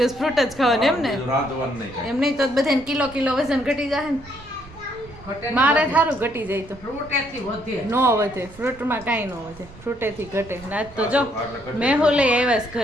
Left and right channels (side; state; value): right; noise; rumble, 21 dB below the sound